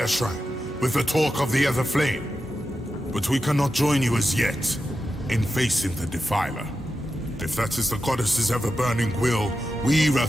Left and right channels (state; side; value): normal; both; correlation 0.90